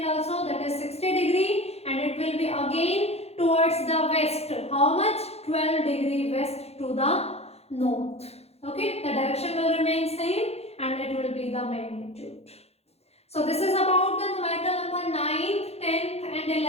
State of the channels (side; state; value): right; late; 0.30 ms